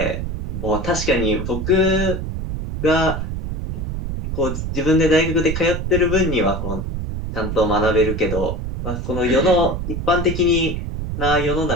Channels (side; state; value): right; noise; rumble, 4 dB below the sound